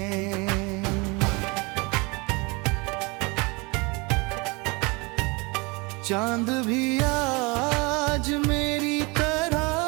चांद भी आज मेरी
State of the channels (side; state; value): left; quieter; 27.6 dB